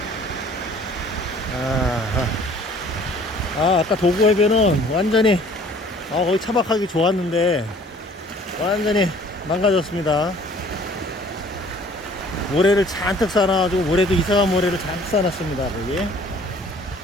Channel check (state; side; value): normal; both; correlation 0.54